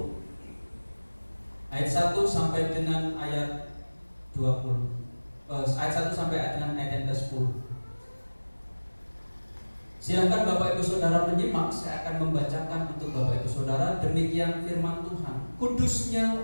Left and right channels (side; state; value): both; inverted; correlation -1.00